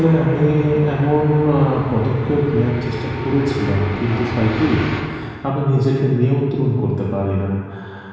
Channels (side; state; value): both; identical; correlation 1.00